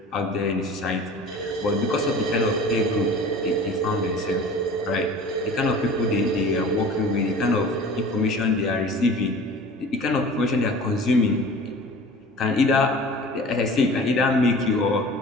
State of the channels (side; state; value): both; normal; correlation 0.41